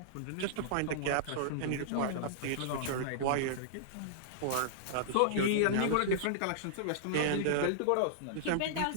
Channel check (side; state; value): both; different; correlation -0.02